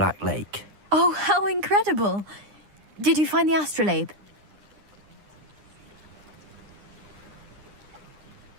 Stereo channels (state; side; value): late; left; 9.9 ms